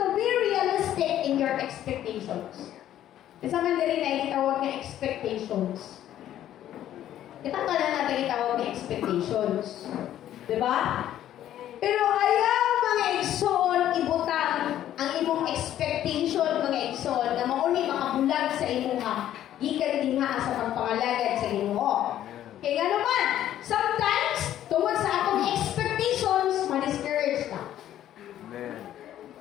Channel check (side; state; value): right; quieter; 11.9 dB